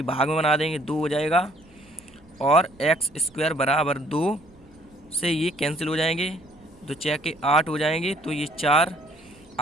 भाग में बना देंगे, 2 हो जाएगा। और एक्स स्क्वायर बराबर 2 से ये कैंसिल हो जाएंगे, 2 6 के 8 हो जाएंगे तो ये 4।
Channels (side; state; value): right; noise; rumble, 28 dB below the sound